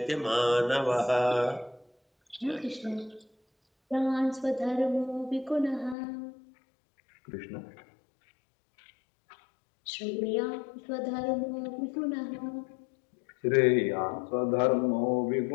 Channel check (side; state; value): right; drops out; at 6.0 s